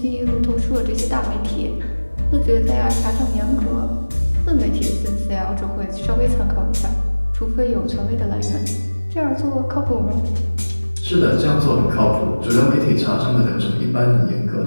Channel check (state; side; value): inverted; both; correlation -1.00